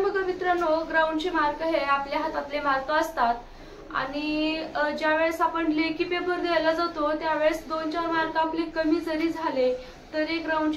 बघा मित्रांनो, ग्राउंडचे मार्क हे आपल्या हातातले मार्क असतात आणि ज्यावेळेस आपण लेखी पेपर द्यायला जातो त्यावेळेस 2-4 मार्क आपले कमी जरी झाले तरी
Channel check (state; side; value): identical; both; correlation 1.00